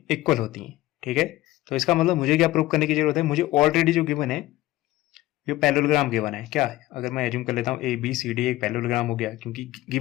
इक्वल होती हैं। ठीक है, तो इसका मतलब मुझे क्या प्रूव करने की जरूरत है, मुझे ऑलरेडी जो गिवन है ये पैरेललोग्राम गिवन है। क्या अगर मैं एज्यूम कर लेता हूँ ए बी सी डी एक पैरेललोग्राम हो गया, क्योंकि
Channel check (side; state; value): right; quieter; 17.0 dB